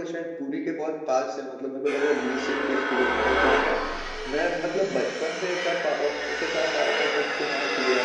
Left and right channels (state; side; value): identical; both; correlation 1.00